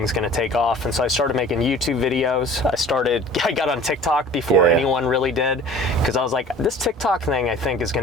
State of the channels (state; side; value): normal; both; correlation 0.45